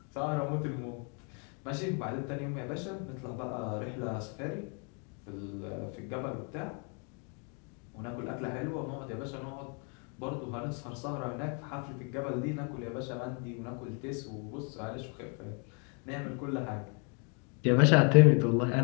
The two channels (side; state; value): right; quieter; 38.2 dB